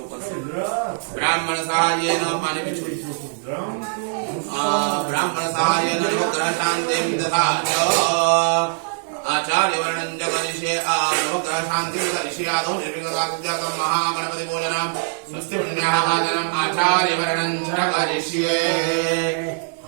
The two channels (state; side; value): silent; left; digital silence